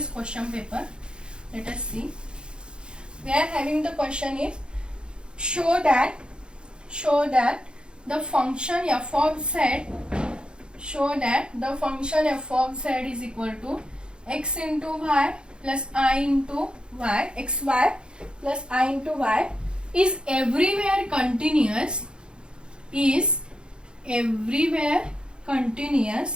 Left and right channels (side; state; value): left; late; 0.052 ms